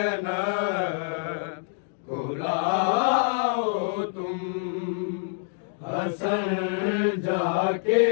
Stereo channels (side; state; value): right; silent; digital silence